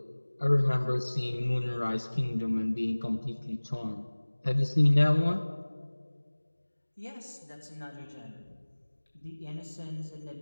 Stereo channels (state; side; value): inverted; both; correlation -1.00